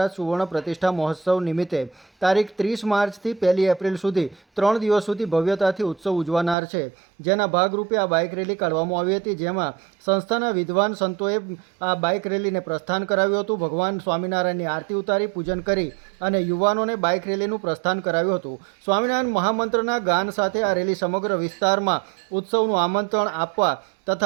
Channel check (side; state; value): left; drops out; at 6.6 s